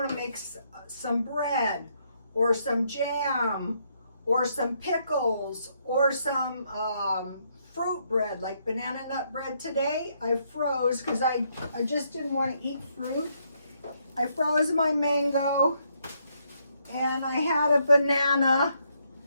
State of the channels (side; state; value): both; inverted; correlation -0.74